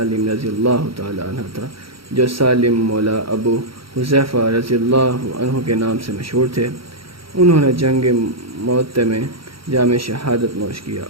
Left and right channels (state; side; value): late; left; 0.75 ms